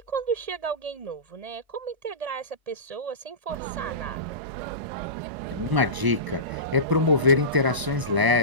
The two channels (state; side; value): late; left; 1.0 ms